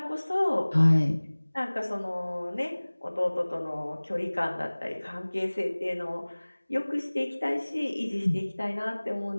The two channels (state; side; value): inverted; both; correlation -1.00